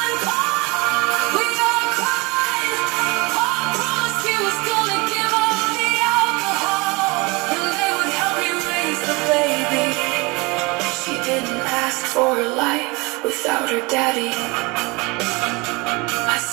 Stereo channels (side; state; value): left; quieter; 26.2 dB